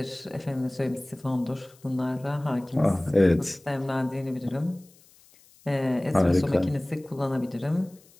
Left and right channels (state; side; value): noise; left; hiss, 28 dB below the sound